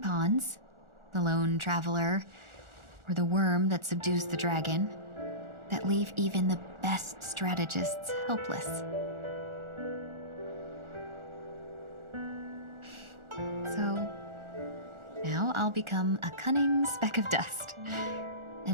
the lone traveler, or the worm that subdues the dragon, that leave even the best strategists helpless. So, now I'll become a cunning speck of dust,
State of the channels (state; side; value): late; left; 1.4 ms